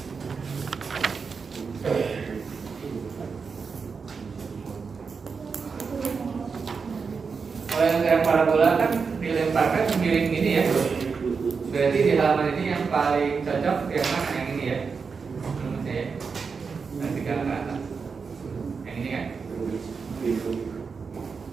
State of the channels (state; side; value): quieter; left; 5.3 dB